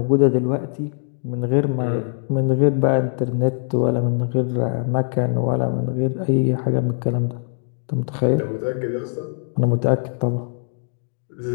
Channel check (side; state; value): right; silent; 64 dB below the other